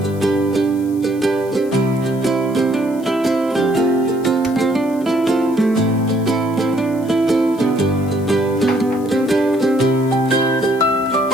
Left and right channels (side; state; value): left; noise; hiss, 24 dB below the sound